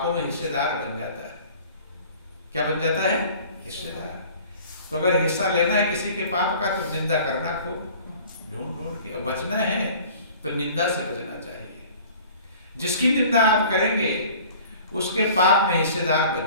में हिस्सेदार बन जाता है। क्या बन जाता है? हिस्सेदार। तो अगर हिस्सा लेना है किसी के पाप का तो निंदा करना खूब ढूंढ ढूंढ के, और बचना है तो निंदा से बचना चाहिए। जिसकी निंदा आप करेंगे उसके पाप में हिस्सेदार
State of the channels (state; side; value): inverted; both; correlation -0.47